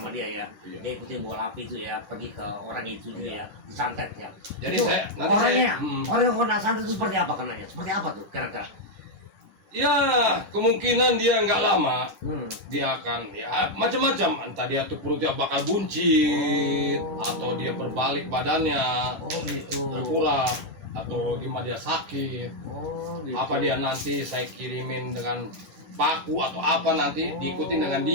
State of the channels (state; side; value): late; left; 10 ms